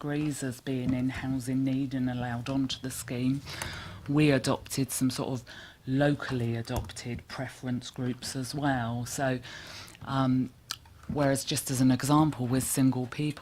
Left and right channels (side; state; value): both; identical; correlation 1.00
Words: as being in housing need and allowed onto the scheme. We adopted some sort of locally adopted preference groups as well. So whereas just as an example with single